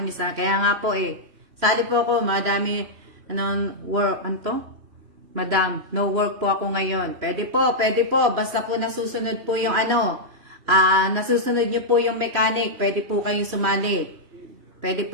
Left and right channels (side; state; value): left; late; 3.0 ms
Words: misa. Kaya nga po sali po ako, madami, Madam, no work po ako ngayon. Pwede po, basta po nasusunod po yung nasusunod nyo po yung mechanic, pwede po kayong sumali.